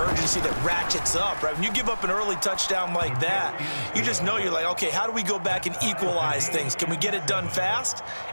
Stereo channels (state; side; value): inverted; both; correlation -1.00